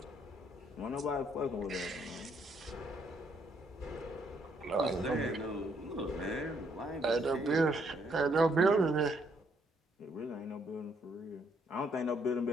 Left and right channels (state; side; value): normal; both; correlation 0.71